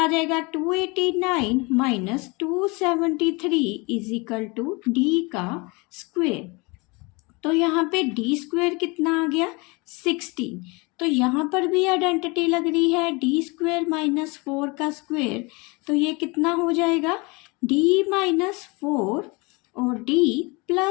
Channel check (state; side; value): quieter; right; 27.2 dB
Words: जाएगा 289 minus 273 is equal to d का स्क्वेयर। तो यहाँ पे d स्क्वेयर कितना आ गया 16। तो यहाँ पर भी आइडेंटिटी लग रही है d स्क्वेयर माइनस 4 का स्क्वेयर, तो ये कितना हो जाएगा d माइनस 4 और d